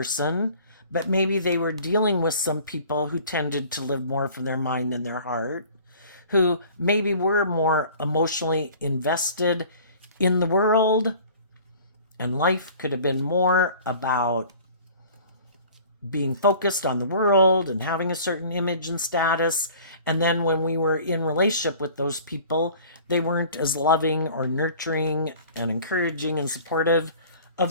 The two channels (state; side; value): inverted; both; correlation -0.47